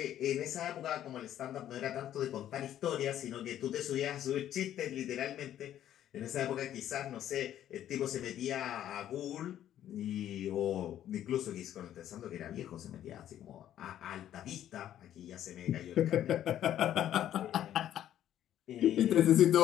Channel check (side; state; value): right; quieter; 11.4 dB